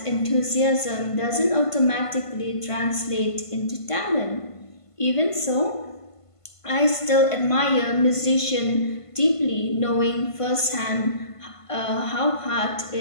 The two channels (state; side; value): late; right; 1.5 ms